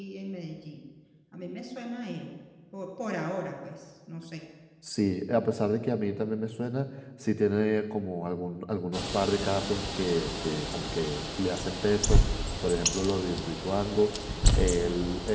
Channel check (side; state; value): both; identical; correlation 1.00